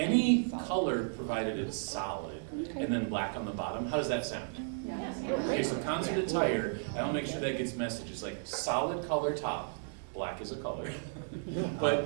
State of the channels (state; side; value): silent; left; 55 dB below the other